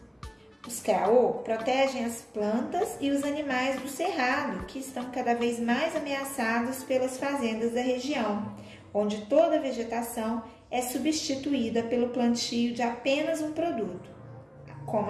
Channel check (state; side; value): identical; both; correlation 1.00